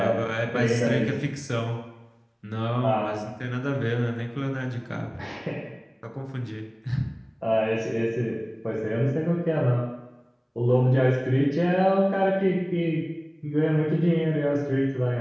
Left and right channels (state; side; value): identical; both; correlation 1.00